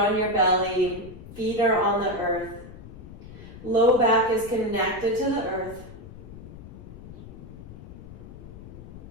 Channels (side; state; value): left; noise; rumble, 15 dB below the sound